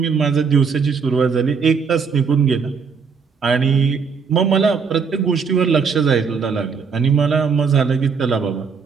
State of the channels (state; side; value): quieter; left; 5.7 dB